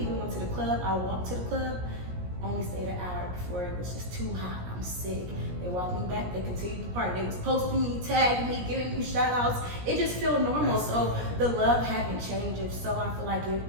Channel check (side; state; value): left; late; 17 ms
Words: went to the club. I walked to the club. Only stayed an hour before it was just too hot. I'm sick. They walked me back. They continued the party. They was posting me, tagging me, giving me shout outs. It just felt normal. So the love hadn't changed. So I feel like